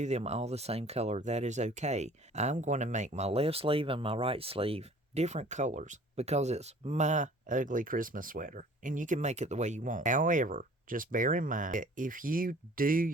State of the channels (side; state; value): both; normal; correlation 0.50